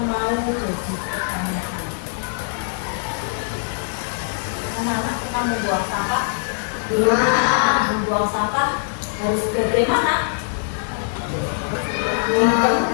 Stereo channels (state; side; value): silent; right; 60 dB below the other